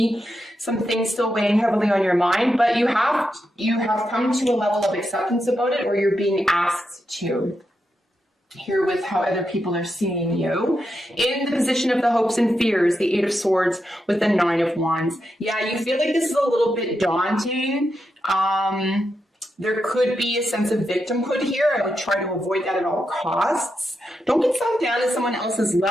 some things still weighing heavily on your mind, but you have come to a level of acceptance about it, or you're being asked to. Here with how other people are seeing you. In the position of the hopes and fears, the 8 of Swords with the 9 of Wands. Yeah, you feel like this is a little bit daunting. There could be a sense of victimhood here. I would try to avoid that at all costs. Don't get sunk down at someone else's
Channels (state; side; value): normal; both; correlation 0.86